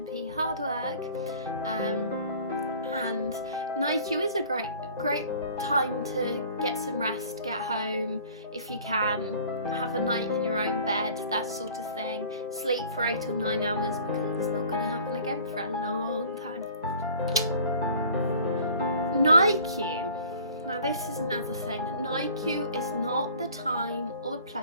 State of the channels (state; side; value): inverted; both; correlation -0.48